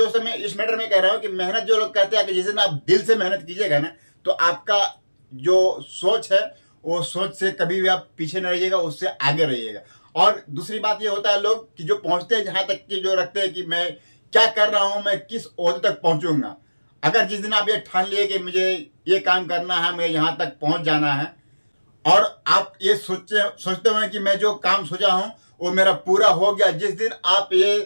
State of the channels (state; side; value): inverted; both; correlation -1.00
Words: मैं इस मैटर में कह रहा हूं कि मेहनत जो लोग कहते हैं कि जिस दिन आप दिल से मेहनत कीजिएगा ना तो आपका जो सोच है वो सोच से कभी भी आप पीछे न रहिएगा, उससे आगे रहिएगा। और दूसरी बात ये होता है लोग कि जो पहुंचते हैं जहां तक कि जो रखते हैं कि मैं क्या कर रहा हूं, मैं किस ओहदे तक पहुंचूंगा। अगर जिस दिन आप ये ठान लिए कि मुझे ये काम करना है, मुझे यहां तक पहुंच जाना है और आप ये सोचते हुए कि मैं जो काम सोचा हूं वो मेरा पूरा हो गया, जिस दिन आप